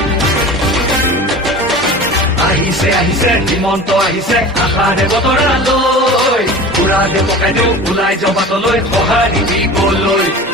আহিছে হিমন্ত আহিছে আশাৰে বতৰা লৈ পুৰা দে পকাই দিওঁ ওলাই যাওঁ বাটলৈ সঁহাৰি দিবলৈ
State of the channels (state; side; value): normal; both; correlation 0.36